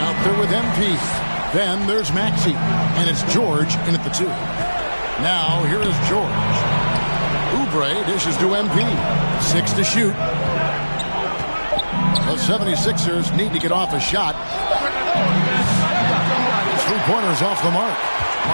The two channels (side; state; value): both; inverted; correlation -1.00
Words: there with MP. Then there's Maxey, and it's George in at the 2. Now here is George. Oubre dishes to MP. 6 to shoot. The 76ers need to get off a shot. 3-pointers off the mark.